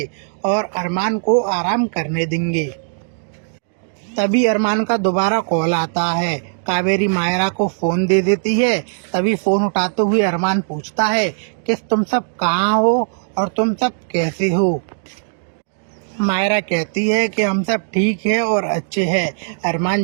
और अरमान को आराम करने देंगे। तभी अरमान का दोबारा कॉल आता है। कावेरी मायरा को फ़ोन दे देती है। तभी फ़ोन उठाते हुए अरमान पूछता है कि तुम सब कहाँ हो और तुम सब कैसे हो। मायरा कहती है कि हम सब ठीक है और अच्छे हैं। अरमान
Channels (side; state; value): left; silent; digital silence